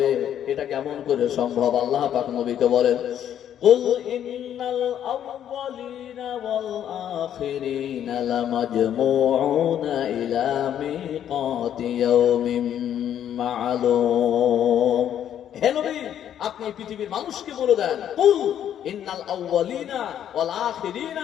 এটা কেমন করে সম্ভব? আল্লাহ পাক নবীকে বলেন, কুল ইন্নাল আউয়ালিনা ওয়াল আখিরিনা লামাজমুউনা ইলা মিকাতি ইয়াউমিন মা'লুম। হে নবী, আপনি পৃথিবীর মানুষকে বলে দেন, কুল, ইন্নাল আউয়ালিনা ওয়াল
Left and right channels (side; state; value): right; quieter; 10.1 dB